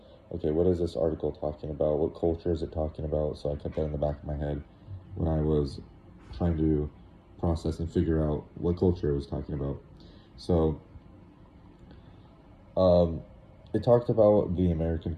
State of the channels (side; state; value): both; identical; correlation 1.00